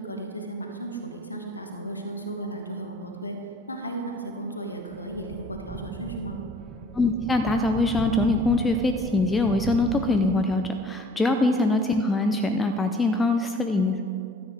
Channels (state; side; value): normal; both; correlation 0.53